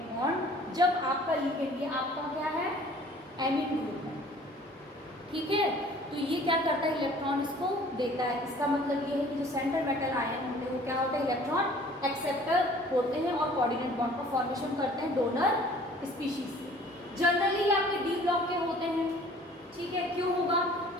बॉन्ड, जब आपका लिगेंड, ये आपका क्या है, एमीन ग्रुप है। ठीक है, तो ये क्या करता है, इलेक्ट्रॉन इसको देता है। इसका मतलब ये है कि जो सेंट्रल मेटल आयन होते हैं वो क्या होते हैं, इलेक्ट्रॉन एक्सेप्टर होते हैं और कोऑर्डिनेट बॉन्ड का फॉर्मेशन करते हैं डोनर स्पीशीज से। जनरली आपके डी ब्लॉक के होते हैं। ठीक है, क्यों होगा?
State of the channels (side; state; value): both; normal; correlation 0.51